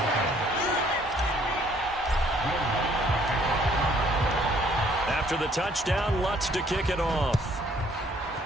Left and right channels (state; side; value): normal; both; correlation 0.62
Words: After the touchdown, Lutz to kick it off.